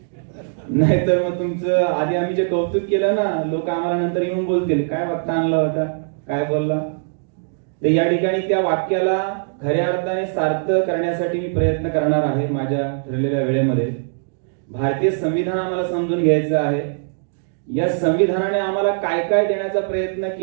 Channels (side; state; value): left; silent; digital silence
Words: नाहीतर मग तुमचं आधी आम्ही जे कौतुक केलं ना, लोक आम्हाला नंतर येऊन बोलतील काय वक्ता आणला होता, काय बोलला. तर या ठिकाणी त्या वाक्याला खऱ्या अर्थाने सार्थ करण्यासाठी मी प्रयत्न करणार आहे माझ्या ठरलेल्या वेळेमध्ये. भारतीय संविधान आम्हाला समजून घ्यायचं आहे. या संविधानाने आम्हाला काय काय देण्याचा प्रयत्न